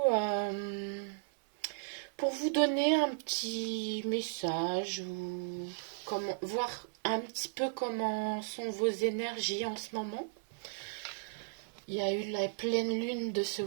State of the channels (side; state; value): left; silent; digital silence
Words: donner un petit message ou voir un petit peu comment sont vos énergies en ce moment. Il y a eu la pleine lune de ce